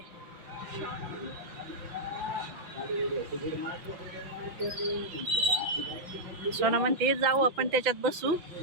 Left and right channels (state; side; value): late; left; 5.9 ms